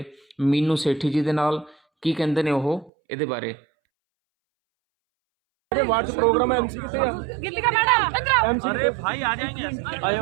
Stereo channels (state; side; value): drops out; left; at 2.9 s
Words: ਮੀਨੂ ਸੇਠੀ ਜੀ ਦੇ ਨਾਲ, ਕੀ ਕਹਿੰਦੇ ਨੇ ਉਹ ਇਹਦੇ ਬਾਰੇ। वार्ड प्रोग्राम है एमसी कितने गिल्ली का मैडम एमसी अरे भाई आ जाएंगे आयो